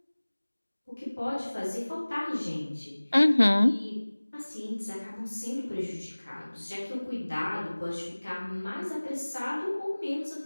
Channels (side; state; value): both; inverted; correlation -1.00